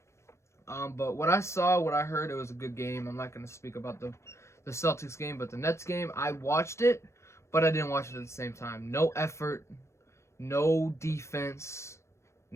but what I saw, what I heard, it was a good game. I'm not going to speak about the Celtics game, but the Nets game, I watched it, but I didn't watch it at the same time. No effort, no defense,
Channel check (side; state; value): right; late; 0.13 ms